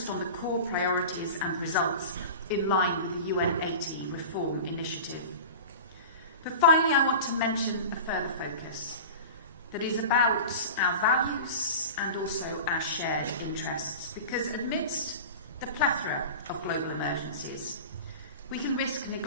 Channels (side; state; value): both; inverted; correlation -0.32